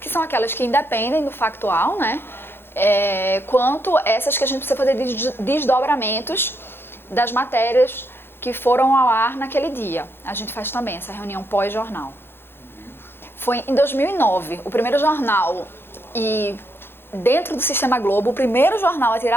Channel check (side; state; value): right; late; 0.11 ms